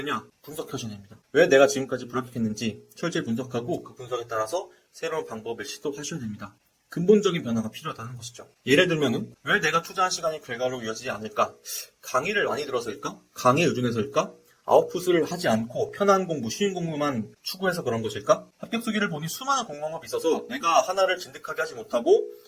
분석하셔야 됩니다. 왜 내가 지금까지 불합격했는지 철저히 분석하고 그 분석에 따라서 새로운 방법을 시도하셔야 됩니다. 근본적인 변화가 필요하다는 것이죠. 예를 들면은 왜 내가 투자한 시간이 결과로 이어지지 않을까? 강의를 많이 들어서일까? 강의에 의존해서일까? 아웃풋을 하지 않고 편한 공부, 쉬운 공부만 추구해서 그런 것일까? 합격 수기를 보니 수많은 공부방법이 있어서 내가 하나를 진득하게 하지 못하고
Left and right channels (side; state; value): both; identical; correlation 1.00